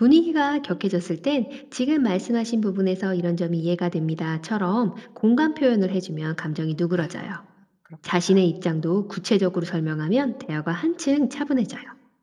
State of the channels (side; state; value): both; identical; correlation 1.00